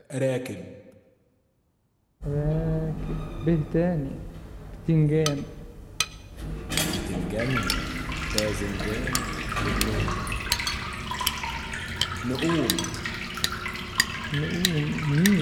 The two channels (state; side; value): identical; both; correlation 1.00